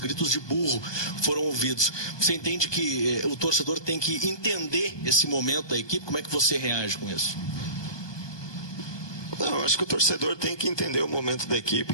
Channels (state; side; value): late; right; 1.2 ms